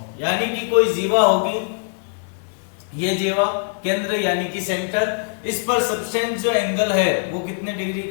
यानी कि कोई जीवा होगी, ये जीवा केंद्र यानी कि सेंटर, इस पर सब्सटेंस जो एंगल है वो कितने डिग्री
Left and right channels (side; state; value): right; silent; digital silence